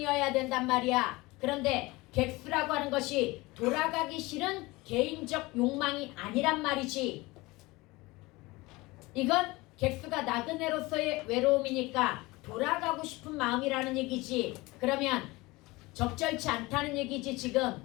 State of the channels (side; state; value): right; quieter; 21.9 dB